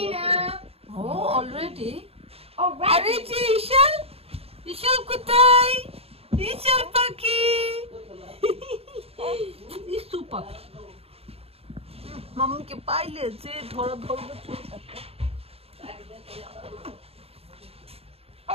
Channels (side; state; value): left; late; 0.29 ms